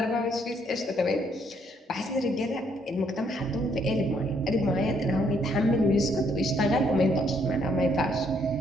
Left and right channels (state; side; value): normal; both; correlation 0.70